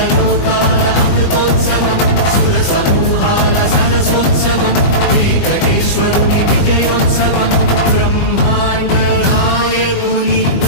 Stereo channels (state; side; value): late; right; 20 ms